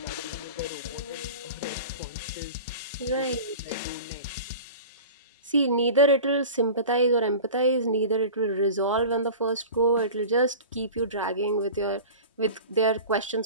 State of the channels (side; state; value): both; inverted; correlation -0.36